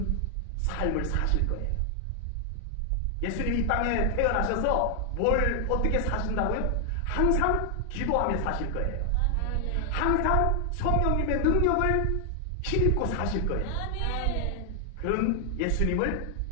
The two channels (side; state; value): both; different; correlation 0.00